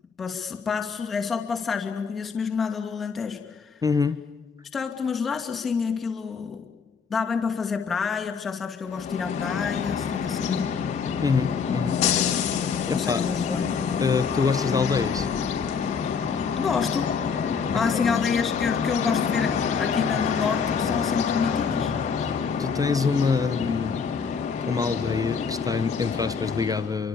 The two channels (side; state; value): right; quieter; 5.8 dB